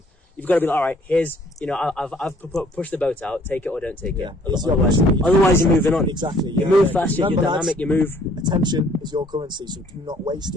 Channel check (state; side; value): normal; both; correlation 0.60